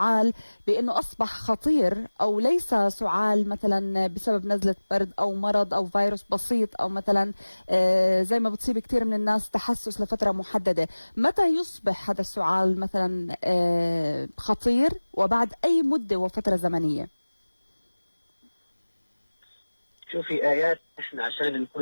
بأنه أصبح خطير، أو ليس سعال مثلا بسبب نزلة برد أو مرض أو فيروس بسيط، أو مثلا زي ما بتصيب كثير من الناس تحسس لفترة محددة. متى يصبح هذا السعال مثلا خطير، وبعد أي مدة وفترة زمنية؟ شوفي آيات، احنا عشان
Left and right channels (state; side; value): inverted; both; correlation -1.00